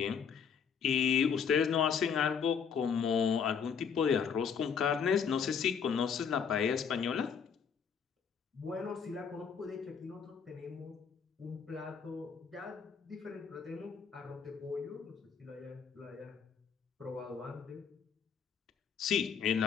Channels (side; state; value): right; quieter; 6.8 dB